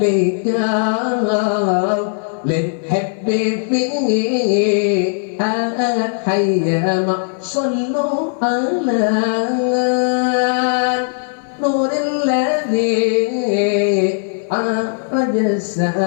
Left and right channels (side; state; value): right; silent; 59 dB below the other